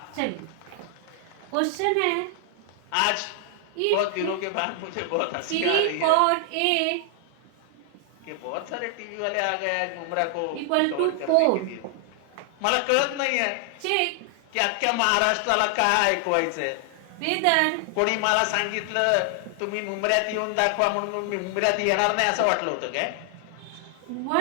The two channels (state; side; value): different; both; correlation 0.00